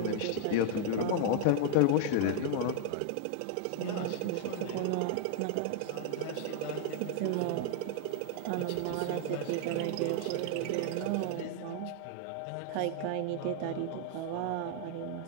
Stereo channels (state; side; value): different; both; correlation 0.00